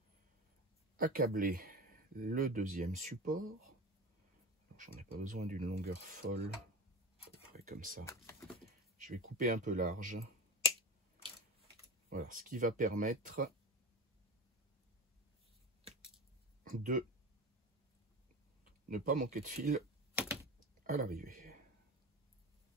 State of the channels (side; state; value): both; normal; correlation 0.26